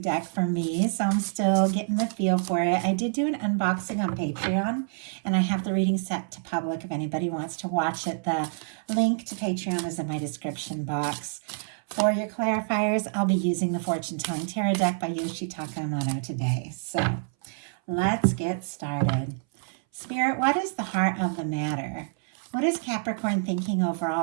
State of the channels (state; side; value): silent; left; 60 dB below the other